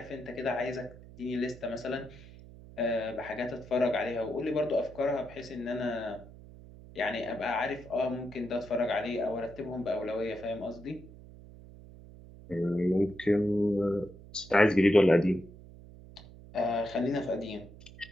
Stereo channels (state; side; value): noise; right; hum, 18 dB below the sound